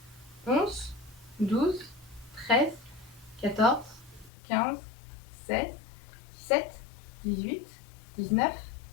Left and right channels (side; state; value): right; drops out; at 4.3 s